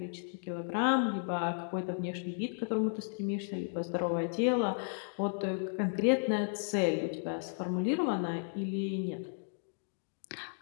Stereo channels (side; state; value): right; silent; digital silence